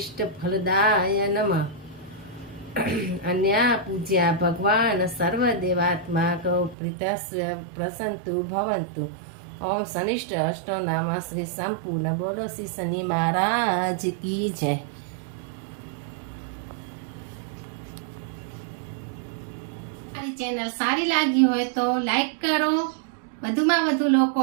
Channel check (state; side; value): drops out; left; at 6.8 s